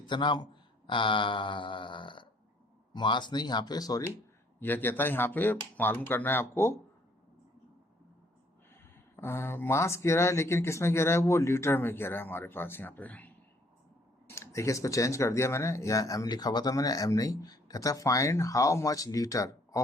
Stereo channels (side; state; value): both; normal; correlation 0.63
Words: मास नहीं यहाँ पे, सॉरी, यह कहता है यहाँ पे मालूम करना है आपको, मास कह रहा है, लेकिन किस में कह रहा है, वो लीटर में कह रहा है हमारे पास यहाँ पे। देखिए इसको चेंज कर दिया मैंने, या एम लिखा हुआ था मैंने, एम नहीं, कहता है find how much litre